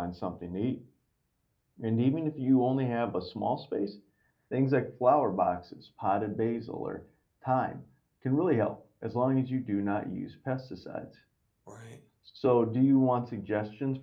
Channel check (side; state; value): both; identical; correlation 1.00